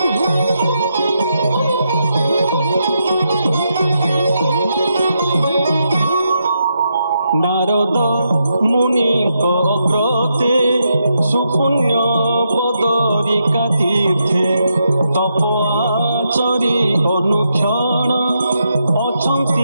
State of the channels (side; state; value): both; inverted; correlation -0.82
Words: নারদ মুনিক অগ্রতে সুপুণ্য বদরিকা তীর্থে তপ আচরি অনুক্ষণ